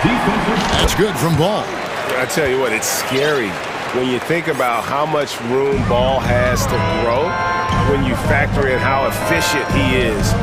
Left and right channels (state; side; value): identical; both; correlation 1.00